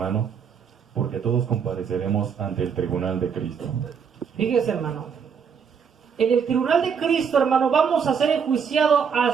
Porque todos compareceremos ante el tribunal de Cristo. Fíjese, hermano, en el tribunal de Cristo, hermano, vamos a ser enjuiciados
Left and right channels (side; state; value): left; quieter; 6.7 dB